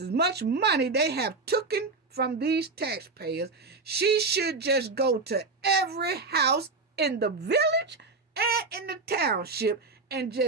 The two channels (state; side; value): quieter; left; 3.9 dB